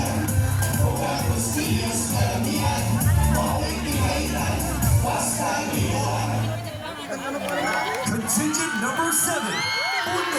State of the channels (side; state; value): both; identical; correlation 1.00